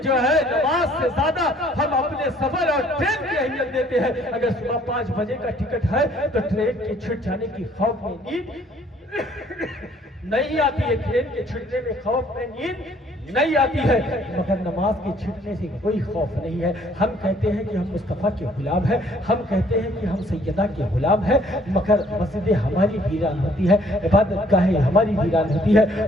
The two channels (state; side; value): normal; both; correlation 0.61